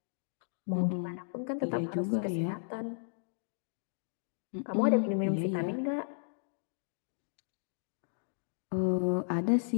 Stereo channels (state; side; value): silent; right; digital silence